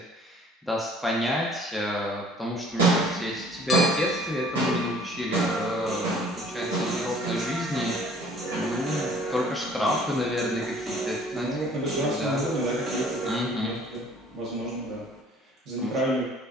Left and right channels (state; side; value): normal; both; correlation 0.54